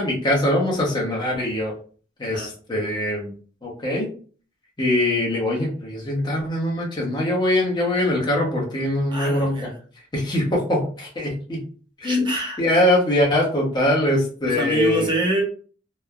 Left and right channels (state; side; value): normal; both; correlation 0.46